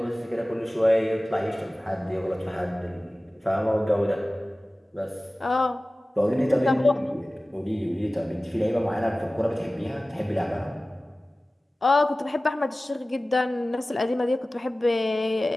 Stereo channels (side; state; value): both; normal; correlation 0.97